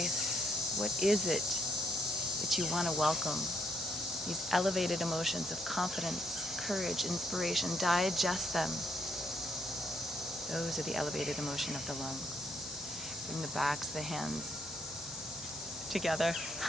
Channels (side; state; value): both; normal; correlation 0.72